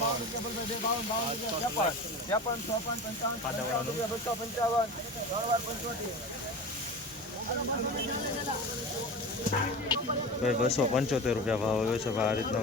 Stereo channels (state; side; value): normal; both; correlation 0.30